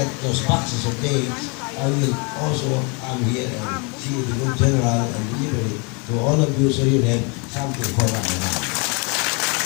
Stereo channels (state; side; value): quieter; right; 32.4 dB